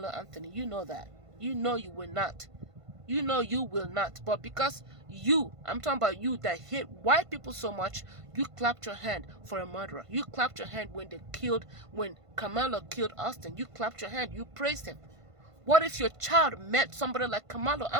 Anthony. You know that. You know you will not. You know you will not. But because I'm talking about you that hate white people so much, you clapped your hand for a murderer. You clapped your hand when Carmelo killed Austin. You clapped your hand. You praised him. What if your child met somebody like Carmelo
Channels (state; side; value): late; left; 1.5 ms